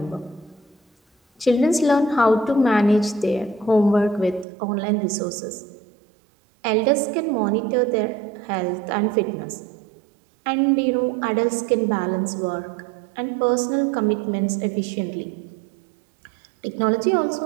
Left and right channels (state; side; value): drops out; left; at 4.5 s